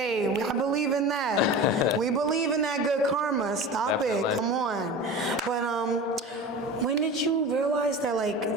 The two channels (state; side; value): normal; both; correlation 0.33